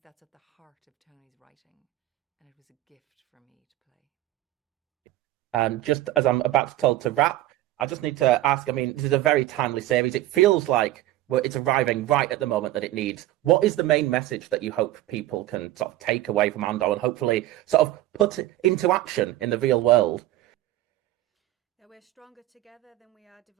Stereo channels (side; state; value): left; quieter; 15.6 dB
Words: that's at the heart of Tony's writing, and it was a gift for me to play. And just as I'm about to wrap, I just need to ask, I mean, this is a very timely series. It feels like it's arriving right at the moment that it needs. What is the main message that you hope people can sort of take away from Andor and hopefully sort of put into action in the real world? That we're stronger together than we are